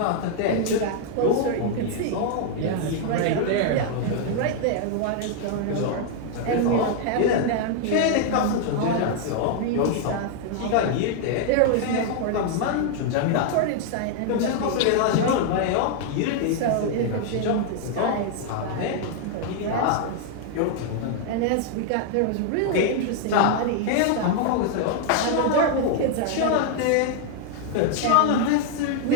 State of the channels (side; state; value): both; different; correlation 0.00